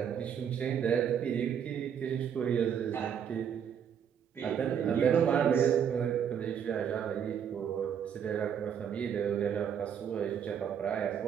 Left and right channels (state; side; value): quieter; left; 8.2 dB